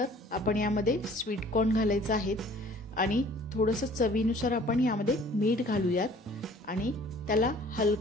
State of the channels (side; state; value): both; normal; correlation 0.52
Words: आपण यामध्ये स्वीट कॉर्न घालायचं आहे आणि थोडंसं चवीनुसार आपण यामध्ये मीठ घालूयात आणि त्याला